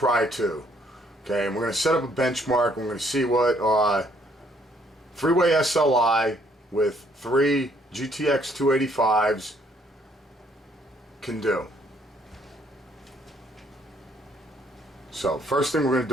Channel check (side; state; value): both; normal; correlation 0.66